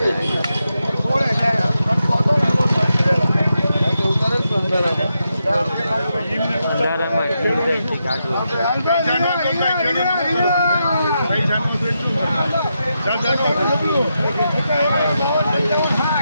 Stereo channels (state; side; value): inverted; both; correlation -0.85